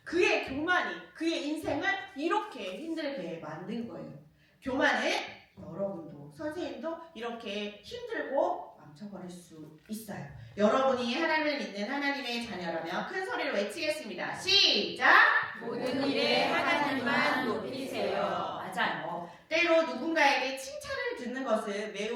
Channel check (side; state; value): both; identical; correlation 1.00